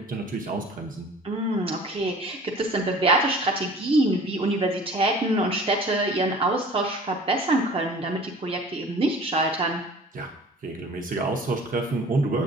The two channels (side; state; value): both; normal; correlation 0.46